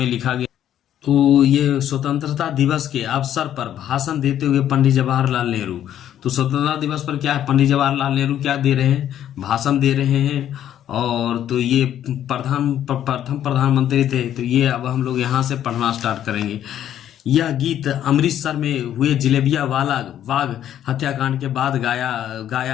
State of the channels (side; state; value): right; quieter; 10.9 dB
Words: लिखा गया। तो ये स्वतंत्रता दिवस के अवसर पर भाषण देते हुए पंडित जवाहरलाल नेहरू। तो स्वतंत्रता दिवस पर क्या है, पंडित जवाहरलाल नेहरू क्या दे रहे हैं, भाषण दे रहे हैं। और तो ये प्रथम प्रधानमंत्री थे। तो ये अब हम लोग यहाँ से पढ़ना स्टार्ट करेंगे। यह गीत अमृतसर में हुए जलेबिया वाला बाग हत्याकांड के बाद